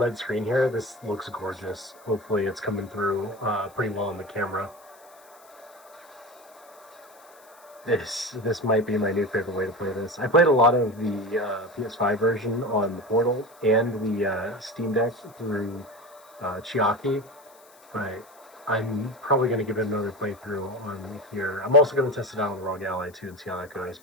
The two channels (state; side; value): noise; left; hiss, 26 dB below the sound